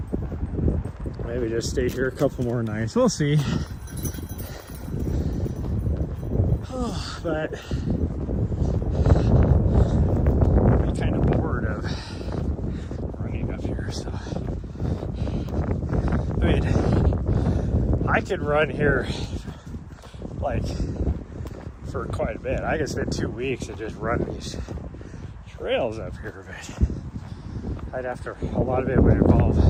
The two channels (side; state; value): both; identical; correlation 1.00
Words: maybe just stay here a couple more nights. We'll see. Oh, but I'm kind of bored of running up here. So I mean, I could run here like for quite a bit. I could spend 2 weeks and just run these trails up here, but I'd have to, a lot of it would involve